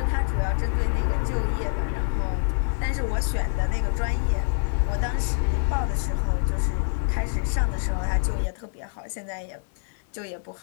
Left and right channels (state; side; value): silent; right; digital silence